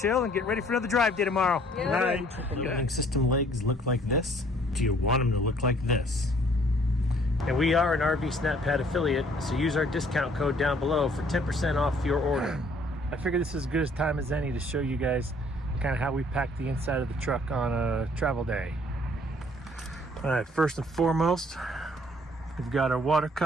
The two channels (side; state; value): both; normal; correlation 0.59